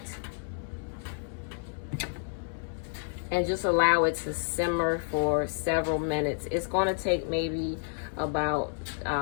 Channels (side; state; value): right; silent; 58 dB below the other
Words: and just allow it to simmer for several minutes. It's going to take maybe about